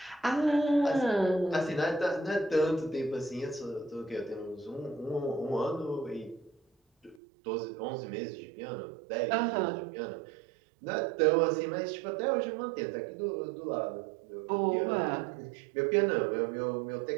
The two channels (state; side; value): drops out; left; at 7.2 s